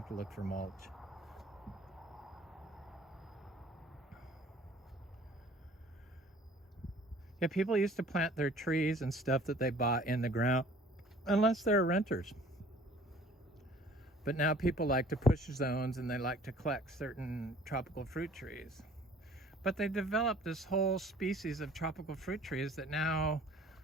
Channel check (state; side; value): normal; both; correlation 0.52